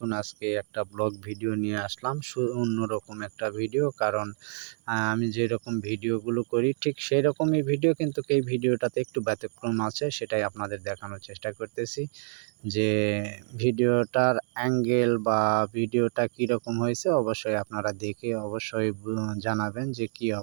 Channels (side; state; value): left; silent; digital silence